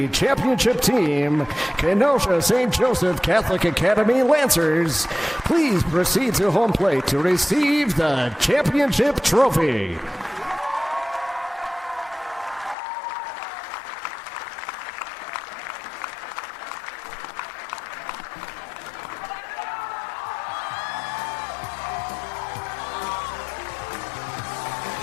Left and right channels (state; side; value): drops out; right; at 12.8 s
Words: championship team, Kenosha St. Joseph Catholic Academy Lancers, please proceed to home plate to receive the championship trophy.